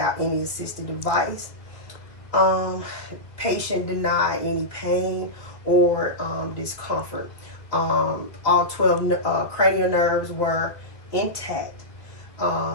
any assistive device. Patient denied any pain or discomfort. All 12 cranial nerves were intact.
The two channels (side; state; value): right; late; 1.6 ms